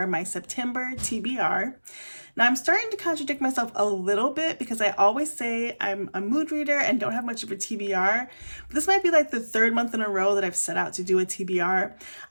my September TBR. Now I'm starting to contradict myself a little bit because I always say I'm a mood reader and don't have much of a TBR, but this might be like the third month in a row that I've set out to do a TBR.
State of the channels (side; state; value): both; inverted; correlation -1.00